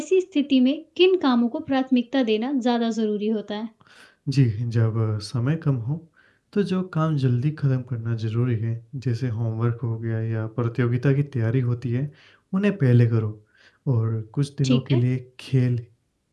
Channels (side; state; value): both; identical; correlation 1.00